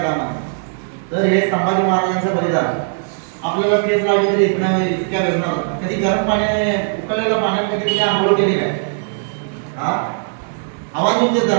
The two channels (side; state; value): left; silent; digital silence